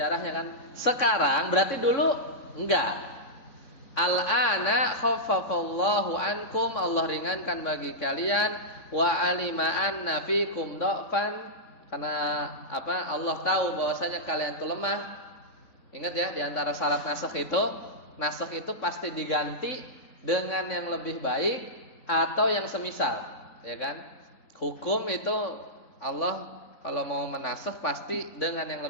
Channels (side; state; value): right; late; 3.6 ms